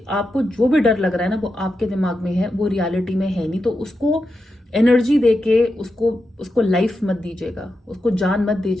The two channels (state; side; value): normal; both; correlation 0.88